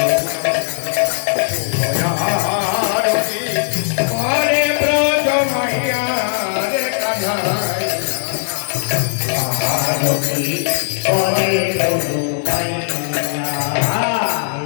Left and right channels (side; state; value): right; silent; digital silence